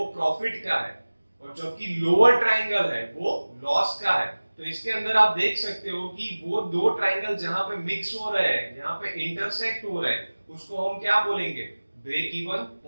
प्रॉफिट का है और जबकि लोअर ट्राइंगल है वो लॉस का है। तो इसके अंदर आप देख सकते हो कि वो दो ट्राइंगल जहां पे मिक्स हो रहे हैं, यहाँ पे इंटरसेक्ट हो रहे हैं, उसको हम क्या बोलेंगे? Break even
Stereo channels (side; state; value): both; inverted; correlation -1.00